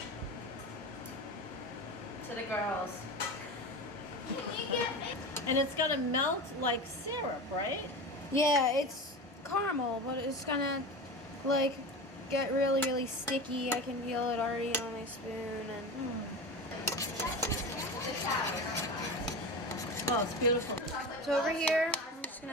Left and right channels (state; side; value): normal; both; correlation 0.27